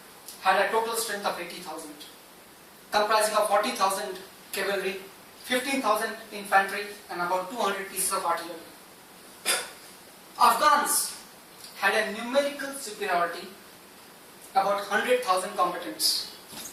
had a total strength of 80,000, comprising of 40,000 cavalry, 15,000 infantry, and about 200 pieces of artillery. Afghans had a numerical superiority, about 100,000 combatants,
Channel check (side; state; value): both; identical; correlation 1.00